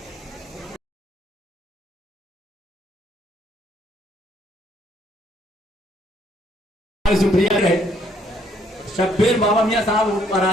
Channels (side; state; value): both; normal; correlation 0.67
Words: शुक्रिया है। शब्बीर बाबा मियाँ साहब ऊपर आ